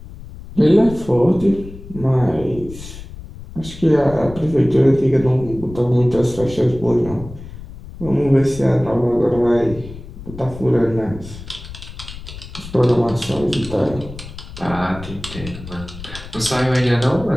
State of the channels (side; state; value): left; noise; rumble, 14 dB below the sound